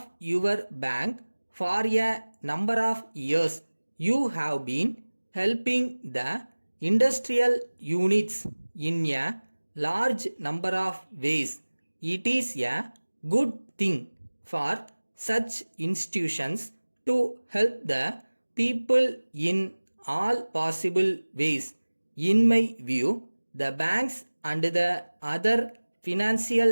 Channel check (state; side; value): inverted; both; correlation -1.00